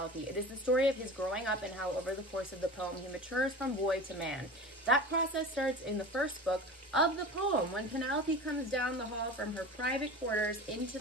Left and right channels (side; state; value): both; normal; correlation 0.34